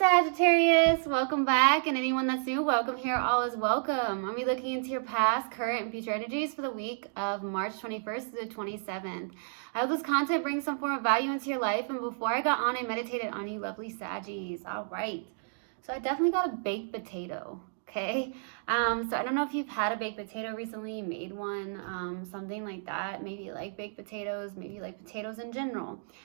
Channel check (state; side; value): silent; left; digital silence